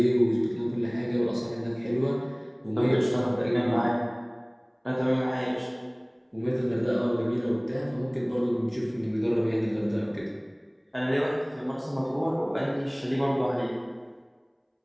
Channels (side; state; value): both; identical; correlation 1.00